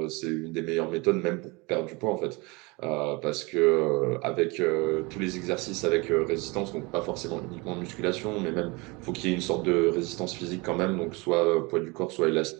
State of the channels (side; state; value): left; quieter; 26.5 dB